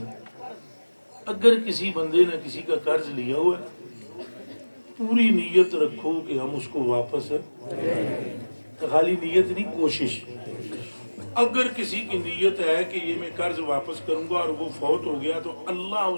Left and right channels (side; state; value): both; inverted; correlation -1.00